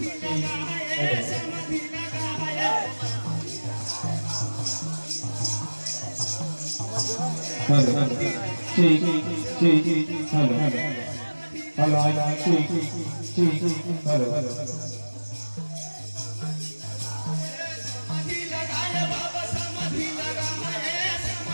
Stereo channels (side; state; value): both; inverted; correlation -1.00